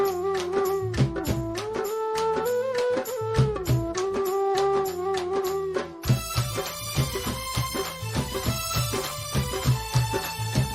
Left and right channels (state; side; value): identical; both; correlation 1.00